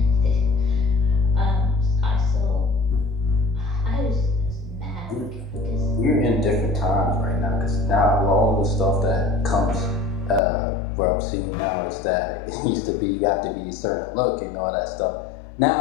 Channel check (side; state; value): right; drops out; at 10.4 s